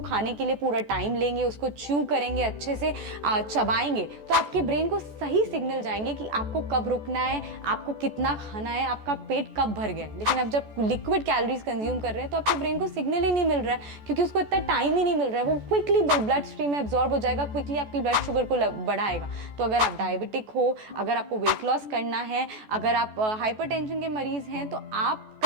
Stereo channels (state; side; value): late; left; 14 ms